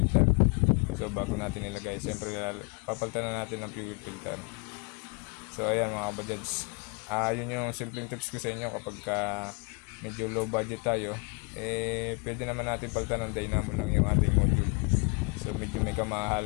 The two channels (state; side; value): quieter; right; 33.7 dB